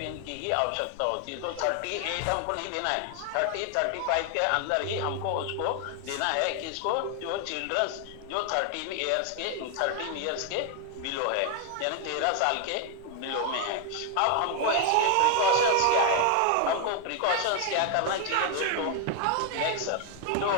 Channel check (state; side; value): different; both; correlation 0.01